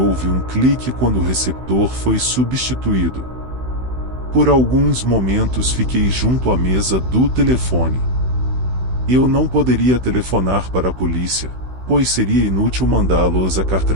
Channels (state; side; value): late; left; 16 ms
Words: um clique quando o receptor foi substituído. Por alguns momentos fiquei junto à mesa do telefone. Eu não poderia telefonar para a polícia, pois seria inútil mandá-los a